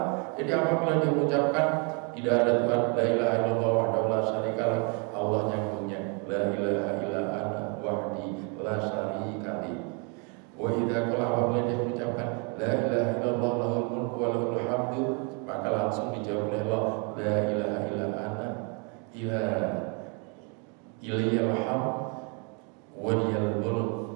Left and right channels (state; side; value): quieter; left; 35.5 dB